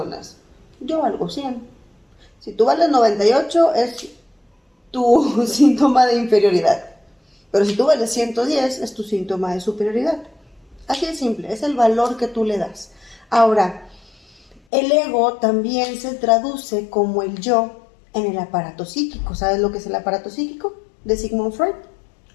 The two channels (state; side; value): drops out; right; at 14.6 s